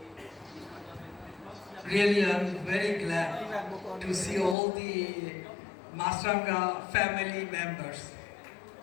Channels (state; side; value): drops out; right; at 4.5 s